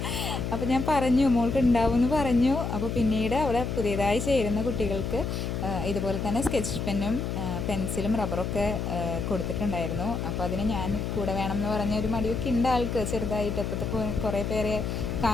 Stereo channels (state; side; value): noise; left; hum, 3 dB below the sound